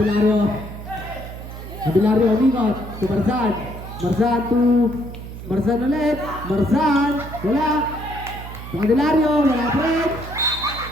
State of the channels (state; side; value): noise; right; hum, 11 dB below the sound